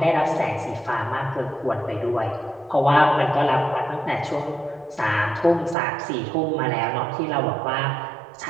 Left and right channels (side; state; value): left; drops out; at 5.8 s